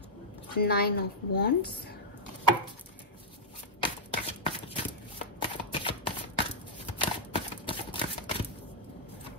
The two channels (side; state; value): both; normal; correlation -0.06